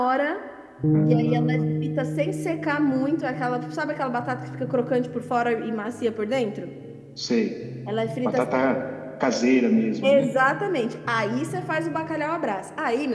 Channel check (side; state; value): both; identical; correlation 1.00